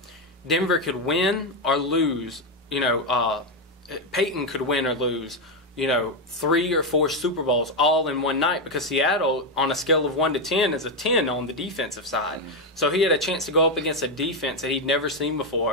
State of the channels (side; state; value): both; normal; correlation 0.06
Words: Denver could win or lose. Peyton could win or lose, 3 or 4 Super Bowls all in one night, because Seattle, on a scale of 1 to 10, is a 10 on the defensive side. So he had a chance to go up against a defense that he'd never seen